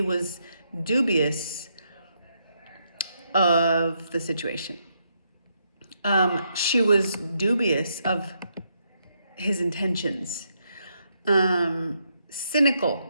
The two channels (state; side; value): inverted; both; correlation -0.77